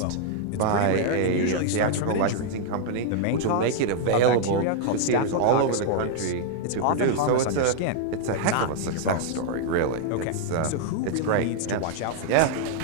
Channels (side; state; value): both; different; correlation -0.01